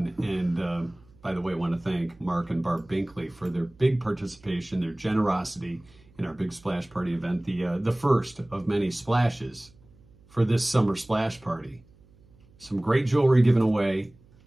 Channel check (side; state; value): right; noise; hum, 28 dB below the sound